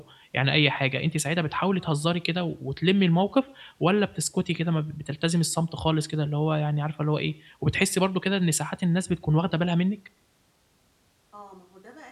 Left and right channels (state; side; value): identical; both; correlation 1.00